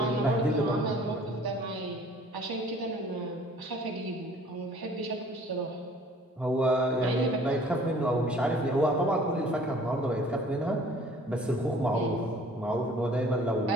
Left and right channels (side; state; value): both; normal; correlation 0.53